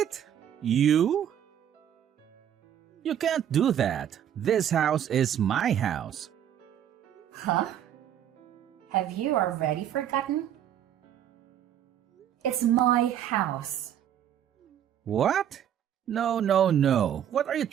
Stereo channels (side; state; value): left; quieter; 10.1 dB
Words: You? You can't do that. This house is my house. Huh? Have you already forgotten? It's my house. What? No. What are you